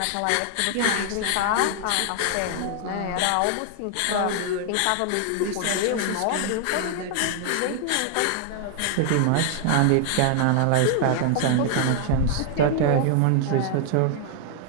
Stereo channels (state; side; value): different; both; correlation 0.00